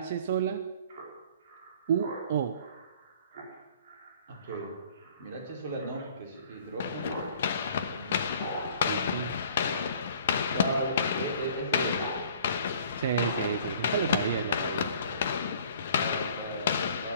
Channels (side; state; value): both; inverted; correlation -0.53